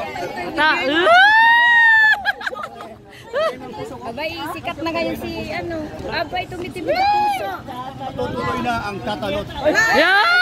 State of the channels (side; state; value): both; identical; correlation 1.00